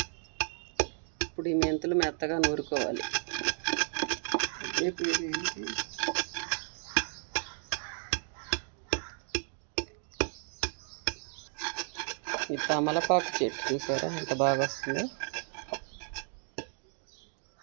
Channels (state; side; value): silent; left; 56 dB below the other